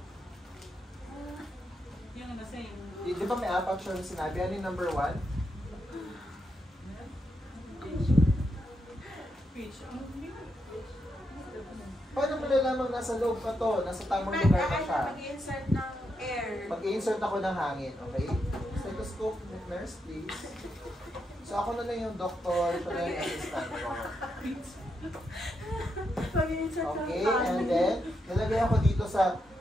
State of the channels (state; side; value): normal; both; correlation 0.82